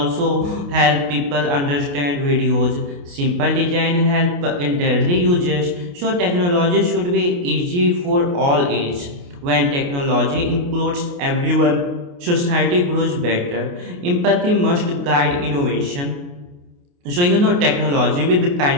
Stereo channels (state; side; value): late; left; 28 ms